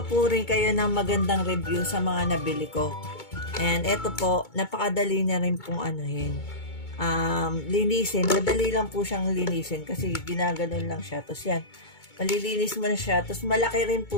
po rin kayo ng magandang review sa mga nabili ko. And eto po, napakadali na rin pong linisin. Madali lang po siyang linisin kasi ginaganon lang siya. Tapos yan, malilinis mo na siya. Tapos malaki rin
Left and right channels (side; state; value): right; late; 2.2 ms